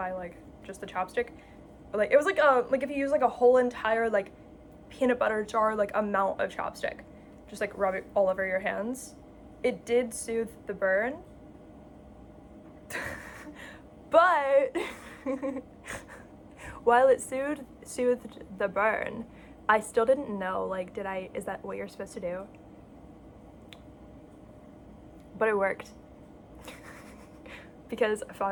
like just the chapstick. Like it was like if you use like a whole entire like peanut butter jar like amount of chapstick, just like rub it all over your hands. It did soothe the burn, but while it soothed the burn, I still didn't know, like, is that what you're supposed to do? But it worked. Because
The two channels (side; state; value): both; identical; correlation 1.00